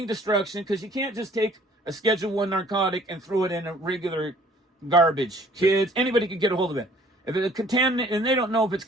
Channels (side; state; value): both; normal; correlation 0.56